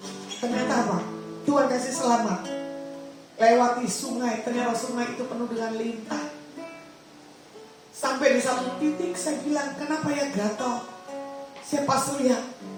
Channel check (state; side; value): identical; both; correlation 1.00